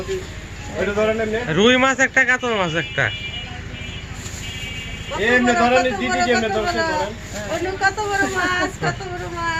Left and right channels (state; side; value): identical; both; correlation 1.00